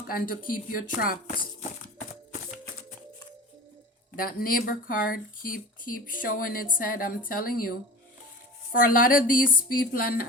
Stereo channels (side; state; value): both; normal; correlation 0.35